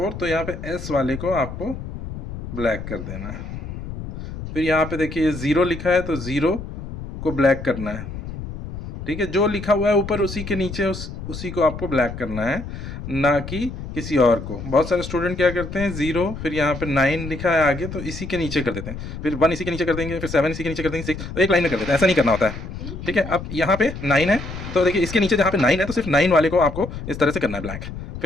तो यहाँ पे S वाले को आपको ब्लैक कर देना है। फिर यहाँ पे देखिए 0 लिखा है, तो 0 को ब्लैक करना है, ठीक है। जो लिखा हुआ है ऊपर उसी के नीचे उसी को आपको ब्लैक करना है, ना कि किसी और को। बहुत सारे स्टूडेंट क्या करते हैं, 0 फिर यहाँ पे 9 लिखा है आगे, तो इसी के नीचे कर देते हैं, फिर 1 इसी के नीचे कर देंगे, फिर 7 इसी के नीचे कर देंगे, 6 तो एक लाइन में कर देते हैं। ऐसा नहीं करना होता है, ठीक है। अब यहाँ पे 9 है, तो देखिए इसके नीचे जहाँ पे 9 है तो सिर्फ 9 वाले को आपको इस तरह से करना है ब्लैक।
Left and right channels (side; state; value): left; noise; rumble, 9 dB below the sound